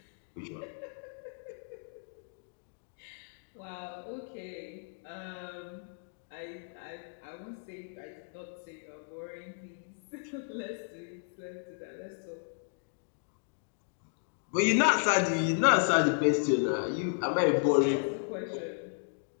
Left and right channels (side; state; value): right; silent; digital silence